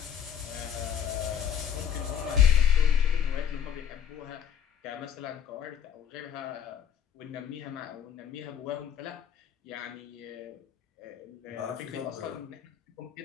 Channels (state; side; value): quieter; right; 9.1 dB